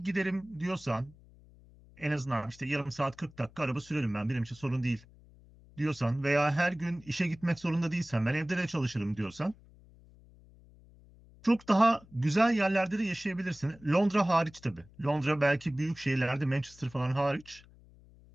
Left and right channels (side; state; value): left; noise; hum, 25 dB below the sound